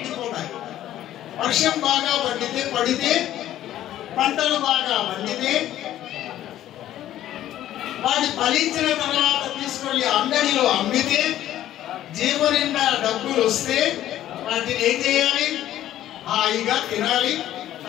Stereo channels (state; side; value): quieter; right; 12.8 dB